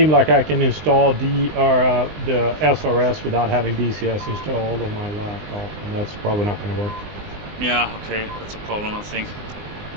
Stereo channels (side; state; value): left; late; 19 ms